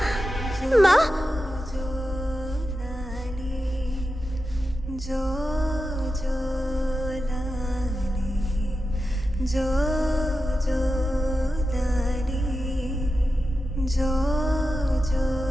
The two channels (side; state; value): both; normal; correlation 0.91